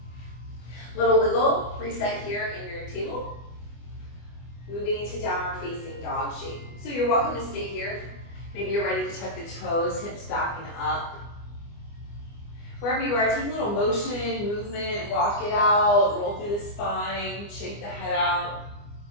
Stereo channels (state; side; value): late; right; 24 ms